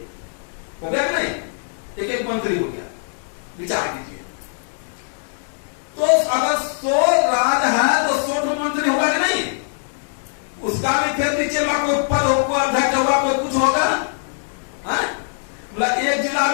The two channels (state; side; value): silent; right; 65 dB below the other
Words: हो गया कि नहीं? एक एक मंत्री हो गया। विचार कीजिए,